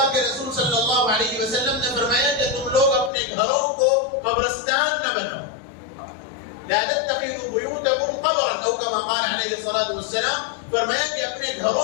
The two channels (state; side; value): drops out; right; at 3.1 s